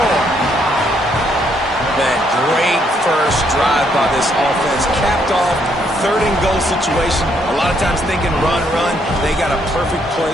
That great first drive by this offense capped off third and goal situation. A lot of times thinking run. They got a perfect play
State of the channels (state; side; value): normal; both; correlation 0.72